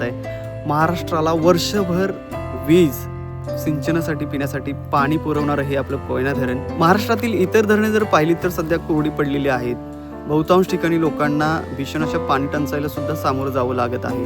आहे. महाराष्ट्राला वर्षभर वीज, सिंचनासाठी, पिण्यासाठी पाणी पुरवणारं हे आपलं कोयना धरण. महाराष्ट्रातील इतर धरणे जर पाहिली तर सध्या कोरडी पडलेली आहेत. बहुतांश ठिकाणी लोकांना भीषण अशा पाणी टंचाईला सुद्धा सामोरं जावं लागत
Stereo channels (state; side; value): identical; both; correlation 1.00